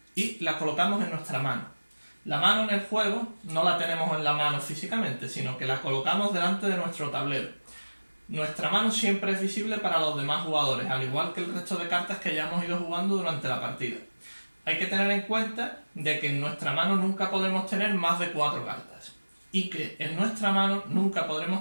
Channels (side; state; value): both; inverted; correlation -1.00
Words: y la colocamos en nuestra mano. La mano en el juego no la tenemos en la mano físicamente, sino que la colocamos delante de nuestro tablero. Nuestra mano siempre es visible para los demás jugadores, al igual que el resto de cartas que ya hemos ido jugando durante la partida. Hay que tener en cuenta de que en nuestra mano nunca podremos tener más de 4 cartas y que en nuestra mano nunca